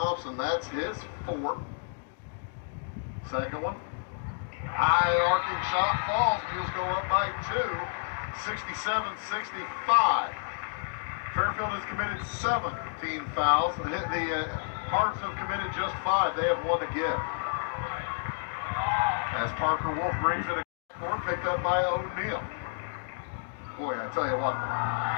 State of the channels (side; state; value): right; silent; digital silence